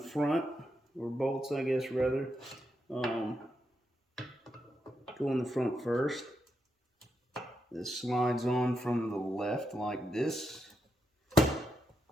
front, or bolts I guess rather, go in the front first. This slides on from the left like this.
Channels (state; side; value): normal; both; correlation 0.83